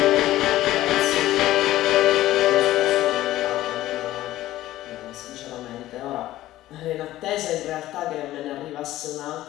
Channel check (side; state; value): right; quieter; 15.0 dB